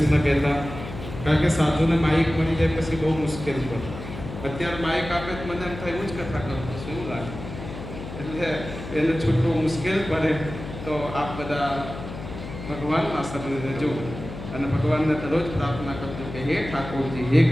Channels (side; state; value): left; noise; hum, 10 dB below the sound